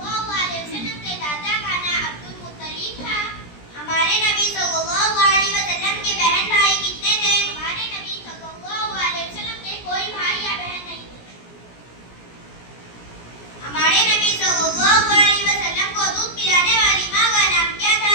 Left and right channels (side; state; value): right; late; 17 ms